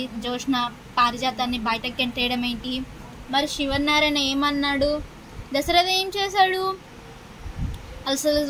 జోష్న పారిజాతాన్ని బయటకు గెంటేయడం ఏంటి? మరి శివనారాయణ ఏమన్నాడు? దశరథ ఏం చేశాడు?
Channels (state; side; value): identical; both; correlation 1.00